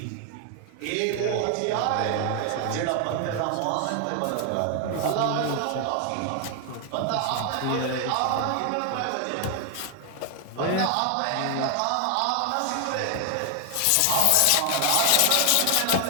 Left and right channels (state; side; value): different; both; correlation 0.00